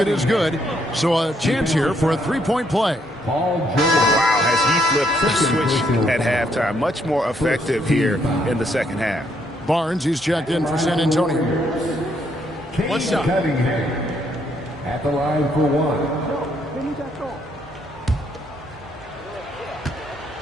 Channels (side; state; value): both; normal; correlation 0.72